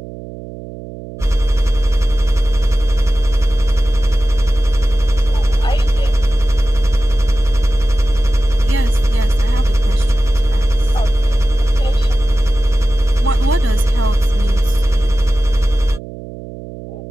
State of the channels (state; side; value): noise; right; hum, 13 dB below the sound